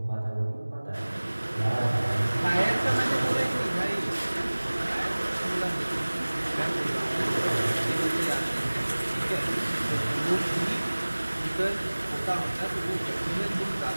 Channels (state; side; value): inverted; both; correlation -1.00